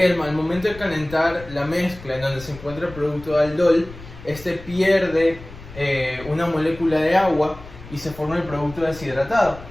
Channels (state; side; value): noise; left; rumble, 16 dB below the sound